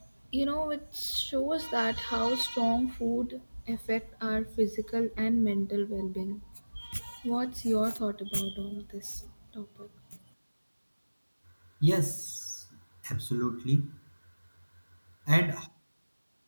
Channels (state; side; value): inverted; both; correlation -1.00